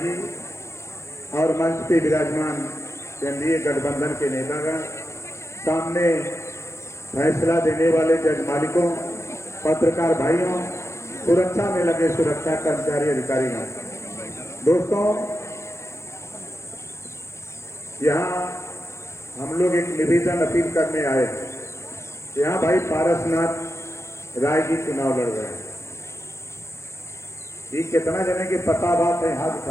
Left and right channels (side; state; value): right; late; 0.13 ms